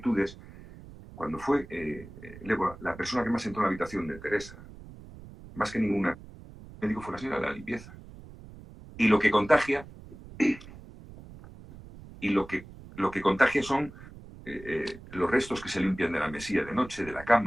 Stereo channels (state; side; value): noise; right; rumble, 17 dB below the sound